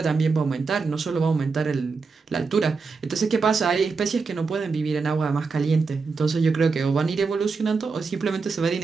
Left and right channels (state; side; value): quieter; left; 4.6 dB